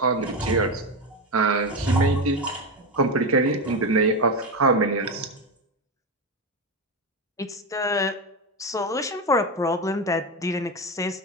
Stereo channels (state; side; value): normal; both; correlation 0.15